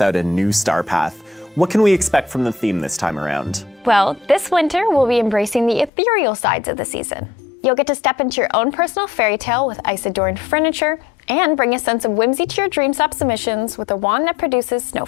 a new star path. What can we expect from the theme this time around? Well, this winter we'll be embracing the ethereal sides of the season. You'll get to step into your own personal fairy tale with ice-adorned furniture and bring a sense of whimsy to your Dreamstop submissions with a wand that produces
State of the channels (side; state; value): right; drops out; at 5.9 s